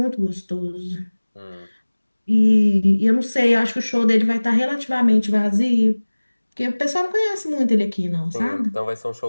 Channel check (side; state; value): both; inverted; correlation -1.00